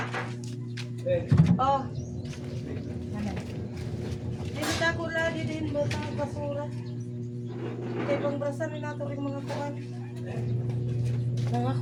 Oh. Dito ako lagi din botang basura. Kaya pang brasan nila ito rin mga kuwan. Mga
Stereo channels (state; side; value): identical; both; correlation 1.00